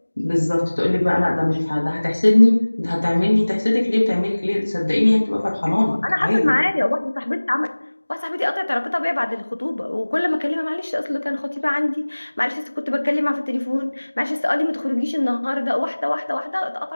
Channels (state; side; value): inverted; both; correlation -1.00